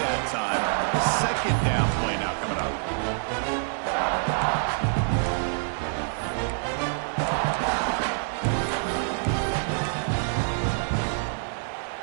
time. Second down play now coming up.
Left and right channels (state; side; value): silent; left; 61 dB below the other